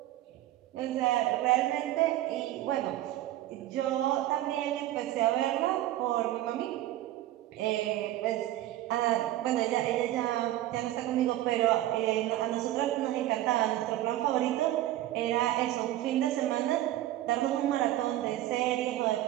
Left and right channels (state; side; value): quieter; left; 14.4 dB